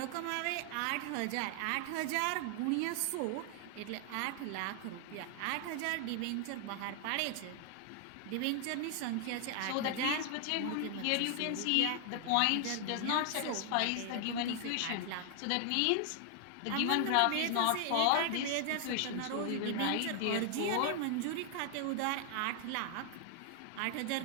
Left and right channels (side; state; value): both; different; correlation 0.00